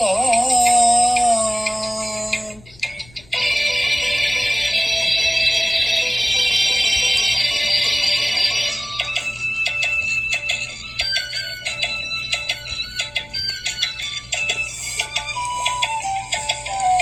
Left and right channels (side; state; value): left; noise; rumble, 25 dB below the sound